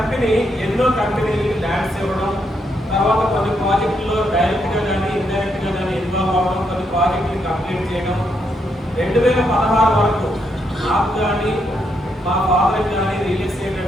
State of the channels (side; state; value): both; normal; correlation 0.78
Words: ఎన్నో కంపెనీలకి ల్యాండ్స్ ఇవ్వడం, తర్వాత కొన్ని ప్రాజెక్టుల్లో డైరెక్ట్గా కానీ ఇండైరెక్ట్గా కానీ ఇన్వాల్వ్ అవ్వడం, కొన్ని ప్రాజెక్టులు కంప్లీట్ చేయడం. 2016 వరకు నాకు కానీ మా ఫాదర్కి కానీ రియల్ ఎస్టేట్